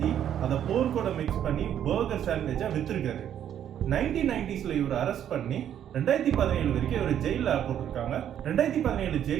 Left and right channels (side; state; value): left; quieter; 10.0 dB